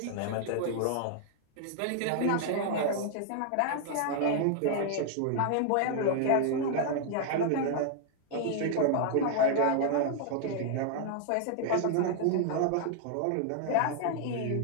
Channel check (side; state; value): both; different; correlation 0.00